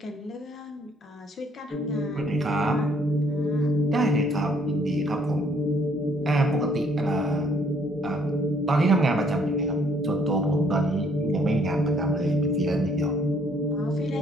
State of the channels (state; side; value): normal; both; correlation 0.65